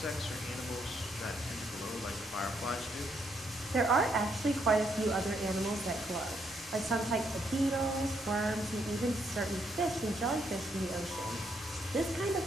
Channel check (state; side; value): normal; both; correlation 0.75